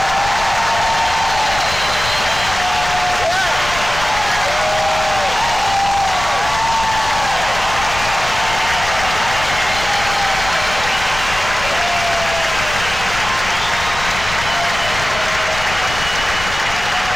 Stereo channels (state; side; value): noise; left; rumble, 10 dB below the sound